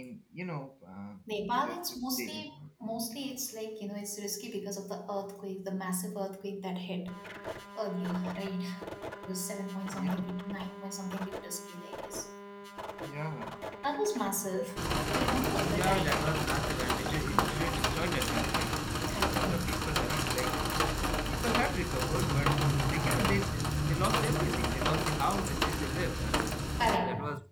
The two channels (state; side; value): identical; both; correlation 1.00